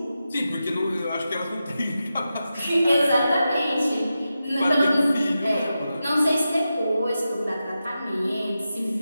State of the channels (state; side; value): inverted; both; correlation -0.91